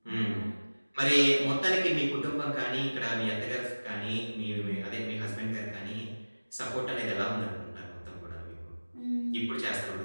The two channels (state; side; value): inverted; both; correlation -1.00